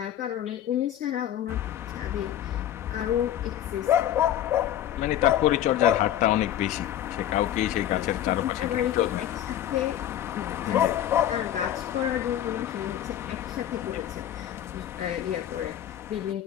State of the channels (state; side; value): quieter; right; 11.5 dB